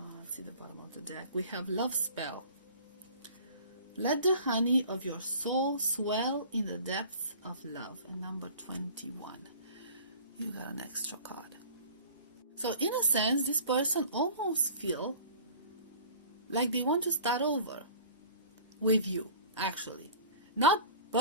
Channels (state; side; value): inverted; both; correlation -0.45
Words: see the bottom of the deck. We have love spell. Let the honey of your soul swell in the depths of love. And number 21. You got an extra card. So in a sense, this person almost feel like they want to start over with you, actually. Not